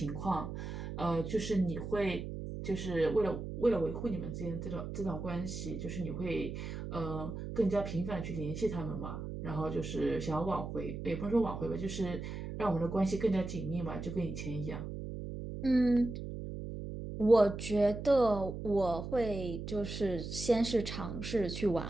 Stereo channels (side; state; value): right; noise; hum, 7 dB below the sound